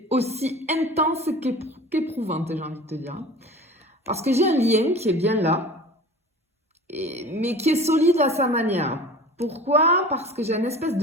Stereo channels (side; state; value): both; normal; correlation 0.39